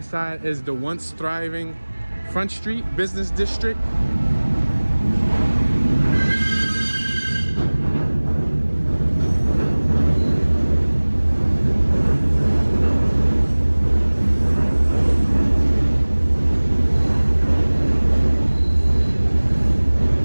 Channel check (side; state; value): both; inverted; correlation -1.00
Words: side is the once thriving Front Street Business District.